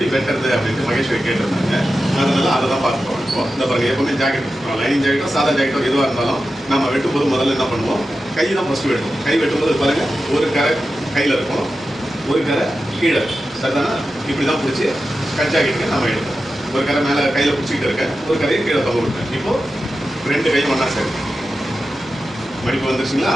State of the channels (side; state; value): both; normal; correlation 0.92